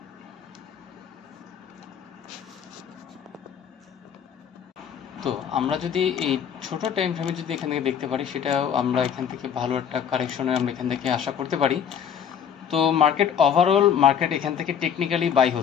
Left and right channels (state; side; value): quieter; right; 8.1 dB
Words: তো আমরা যদি এই ছোট টাইম ফ্রেমে যদি এখান থেকে দেখতে পারি, সেটাও আমরা এখান থেকে ভালো একটা কারেকশনে আমরা এখান থেকে আশা করতে পারি। তো ওভারঅল মার্কেট এখান থেকে টেকনিক্যালি বাই